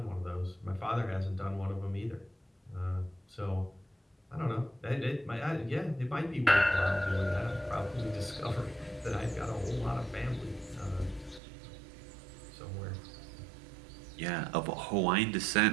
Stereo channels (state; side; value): drops out; left; at 11.4 s